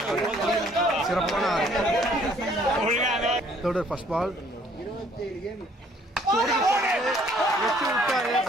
சிறப்பான 6. தேர்ட் ஃபர்ஸ்ட் பால் வச்சு விட்டாரு.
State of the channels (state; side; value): normal; both; correlation 0.61